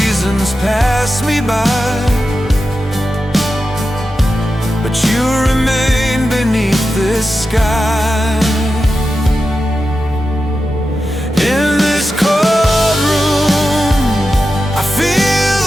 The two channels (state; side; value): normal; both; correlation 0.91